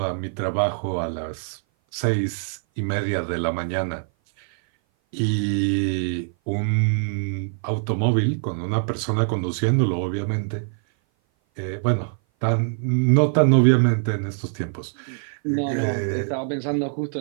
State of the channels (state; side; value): silent; left; 57 dB below the other